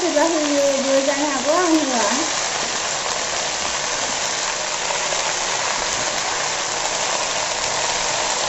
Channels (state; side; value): identical; both; correlation 1.00